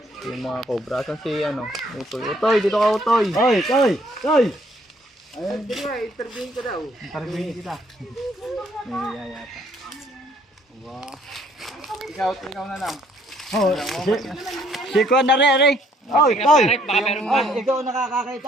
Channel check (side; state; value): both; normal; correlation 0.65